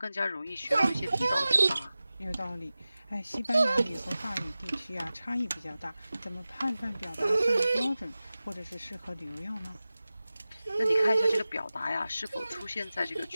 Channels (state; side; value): inverted; both; correlation -0.96